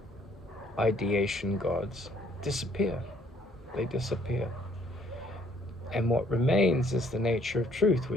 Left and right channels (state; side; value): normal; both; correlation 0.63